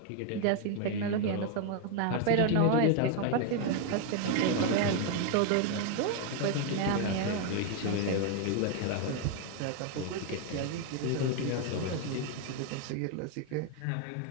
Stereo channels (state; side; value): different; both; correlation 0.01